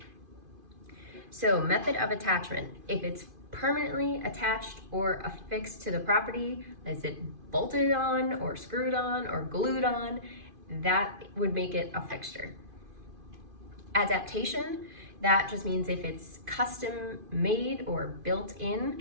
So method of attachment, if it's permanently attached or affixed to the property, is it bolted on or screwed on or glued on, that would make it a fixture. Adaptation, that just means if it's custom made or built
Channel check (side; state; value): left; late; 2.5 ms